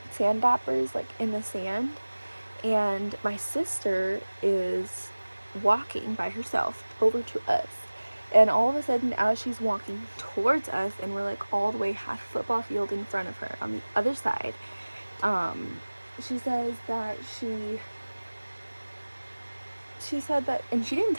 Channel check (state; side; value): inverted; both; correlation -1.00